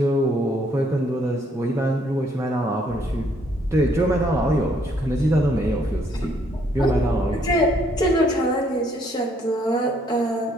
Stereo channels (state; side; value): normal; both; correlation 0.67